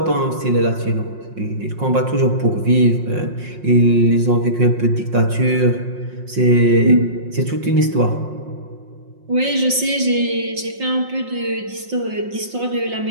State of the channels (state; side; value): late; left; 5.6 ms